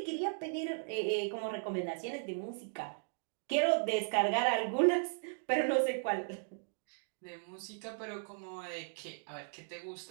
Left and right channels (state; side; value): silent; left; digital silence